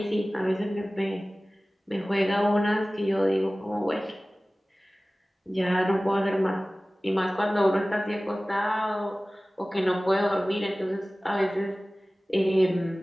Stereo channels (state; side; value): normal; both; correlation 0.98